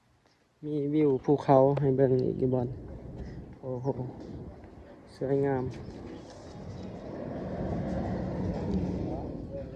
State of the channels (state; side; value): identical; both; correlation 1.00